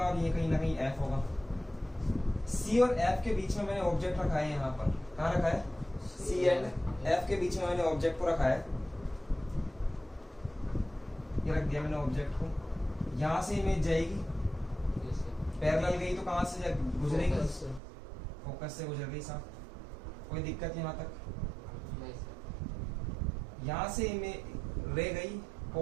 ये कहीं ना कहीं एफ होगा। सी और एफ के बीच में मैंने ऑब्जेक्ट रखा है, यहाँ पर कहाँ रखा है? सी एंड एफ के बीच में मैंने ऑब्जेक्ट को रखा है, ये रख दिया मैंने ऑब्जेक्ट को। यहाँ से इमेज जाएगी, पैरेलल गई तो कहाँ से गुजरेगी? फोकस से गुजर गई साहब। कोई दिक्कत यहाँ तक? यहाँ से इमेज रे गई,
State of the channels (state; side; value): drops out; left; at 17.8 s